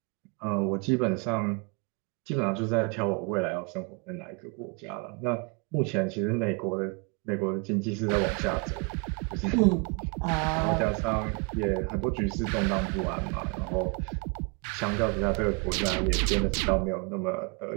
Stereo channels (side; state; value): left; quieter; 32.3 dB